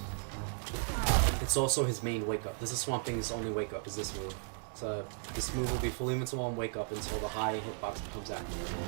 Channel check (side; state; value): left; silent; 54 dB below the other